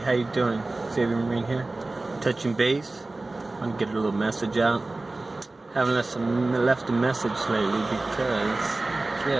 you doing? Xavier Marine here. Touching base. I want to get a little message out. Haven't left a message lately because,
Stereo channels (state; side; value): quieter; left; 3.1 dB